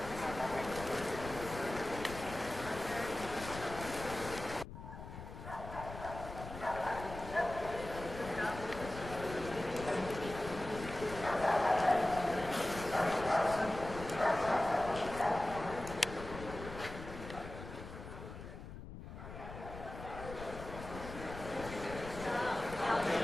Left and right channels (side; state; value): left; noise; rumble, 11 dB below the sound